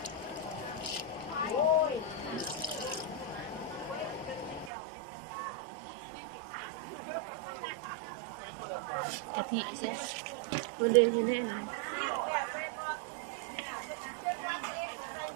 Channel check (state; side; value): drops out; left; at 4.7 s